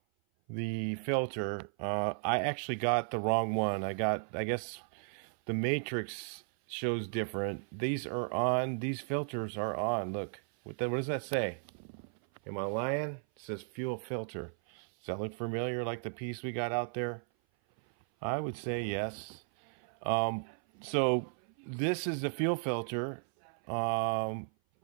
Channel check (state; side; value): silent; left; 54 dB below the other